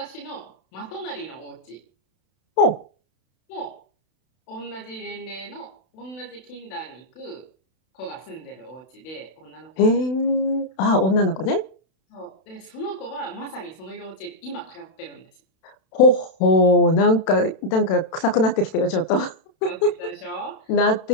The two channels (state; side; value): late; right; 32 ms